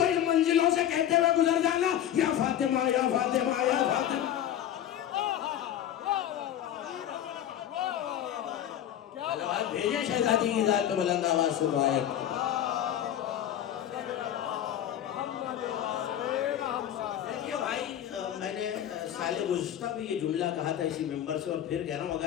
ان منزلوں سے کہتے ہوئے گزر جانا یا فاطمہ یا فاطمہ یا فاطمہ۔ صلوات بھیجیں شہزادی کی ذات پہ بلند آواز سے دعائیں۔ دیکھیے بھائی، میں نے سال گزشتہ بھی یہ جملہ کہا تھا اسی ممبر سے، اور پھر کہہ رہا ہوں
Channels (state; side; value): quieter; right; 10.9 dB